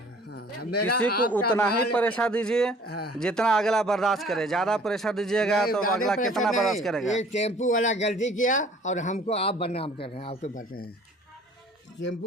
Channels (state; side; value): normal; both; correlation 0.52